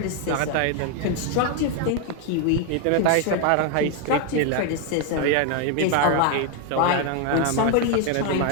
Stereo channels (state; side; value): different; both; correlation 0.01